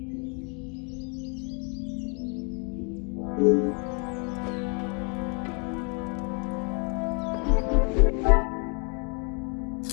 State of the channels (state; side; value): quieter; right; 35.9 dB